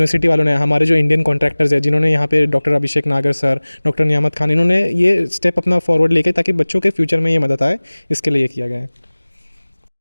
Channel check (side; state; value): both; inverted; correlation -1.00